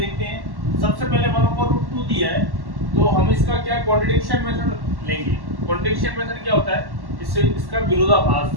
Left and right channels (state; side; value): late; left; 1.1 ms